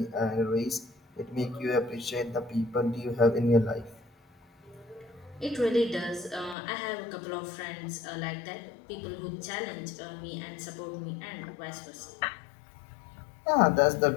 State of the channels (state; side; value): drops out; right; at 6.6 s